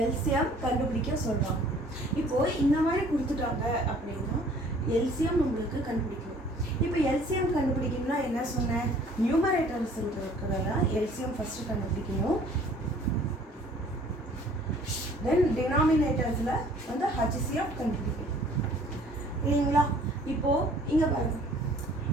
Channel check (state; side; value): normal; both; correlation 0.54